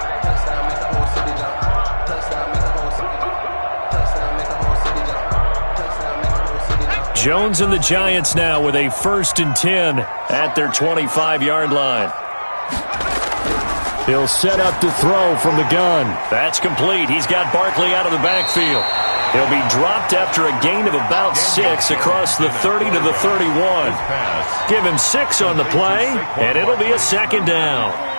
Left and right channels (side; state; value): both; inverted; correlation -1.00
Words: Jones and the Giants now with a 1st and 10 at their 25-yard line. He'll set up to throw from the gun. That's complete. He's got Barkley out of the backfield. He'll be dropped after a gain of about 6 across the 30 to the 31. Give him 6 on the play, and it'll be a 2nd down.